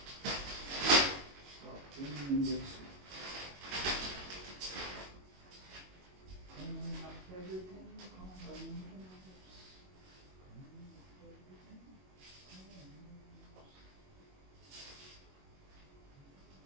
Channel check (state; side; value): late; left; 21 ms